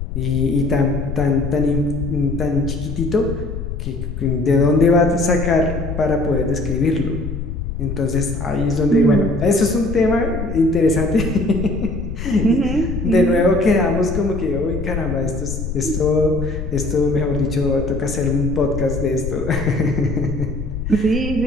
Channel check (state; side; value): noise; left; rumble, 6 dB below the sound